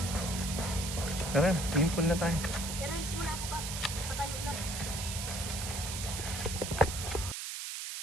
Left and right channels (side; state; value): right; noise; hiss, 5 dB below the sound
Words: Tara, swimming pool na tayo.